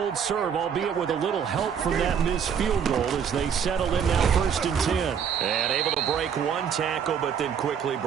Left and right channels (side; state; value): left; quieter; 7.6 dB